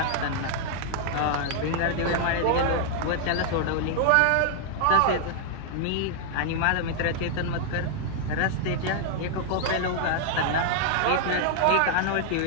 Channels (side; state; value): both; different; correlation 0.00